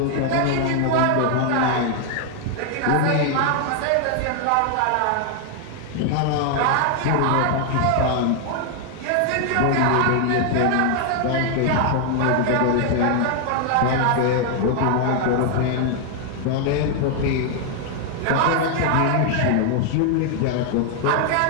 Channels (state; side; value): different; both; correlation 0.00